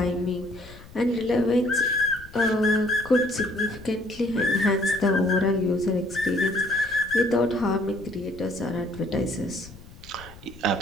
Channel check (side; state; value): left; noise; rumble, 19 dB below the sound